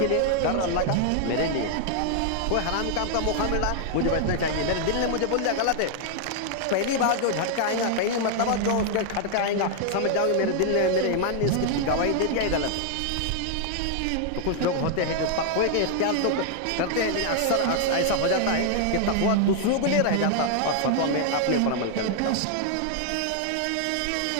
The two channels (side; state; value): both; different; correlation 0.00